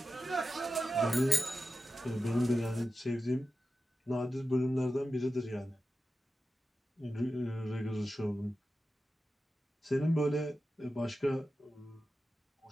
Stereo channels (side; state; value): both; normal; correlation 0.92